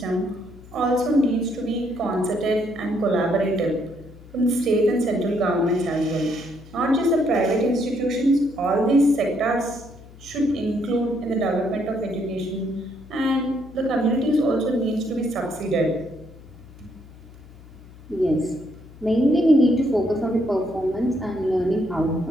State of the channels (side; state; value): left; noise; hum, 20 dB below the sound